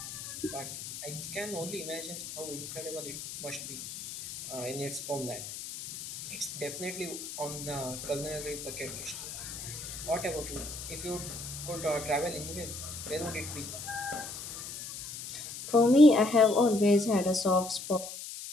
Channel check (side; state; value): left; noise; hiss, 9 dB below the sound